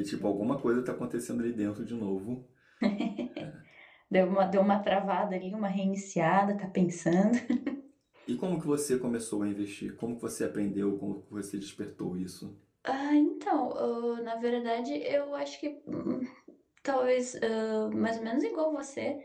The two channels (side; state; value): both; identical; correlation 1.00